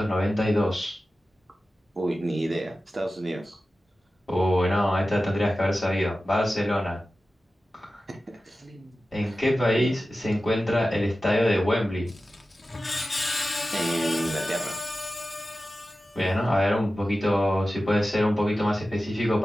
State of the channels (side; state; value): both; normal; correlation 0.94